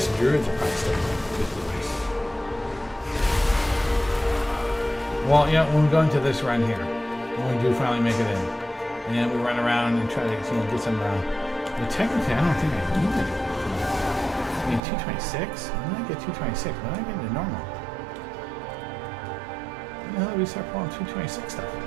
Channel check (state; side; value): drops out; left; at 14.8 s